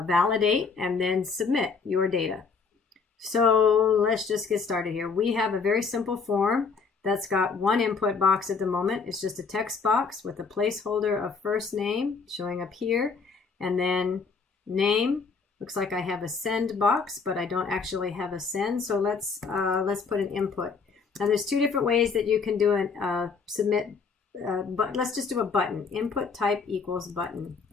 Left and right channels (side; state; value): right; quieter; 5.1 dB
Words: validate and then submit your data. So let's just get started here. We have a very simple form that's got one input box at the moment. It's just a text box with a placeholder of first name showing up here, and then name. Looks like I have a send box, but I don't actually have a send. So let's put an input. Now there's two different ways that you can do an submit, but let's just do a button. Input type equals button.